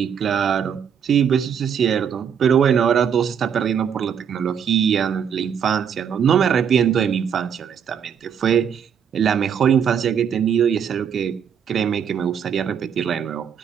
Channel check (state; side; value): quieter; left; 7.8 dB